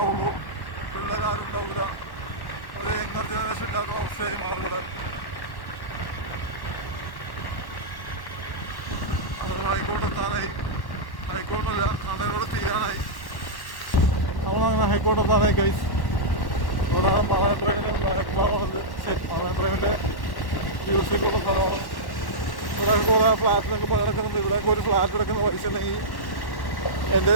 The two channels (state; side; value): late; right; 1.1 ms